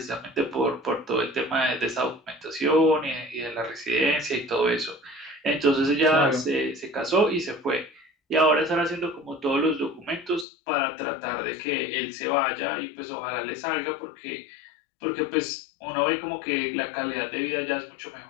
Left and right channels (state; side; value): drops out; right; at 10.5 s